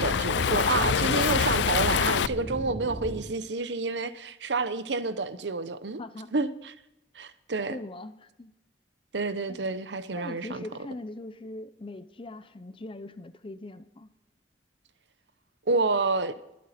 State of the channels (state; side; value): normal; both; correlation -0.12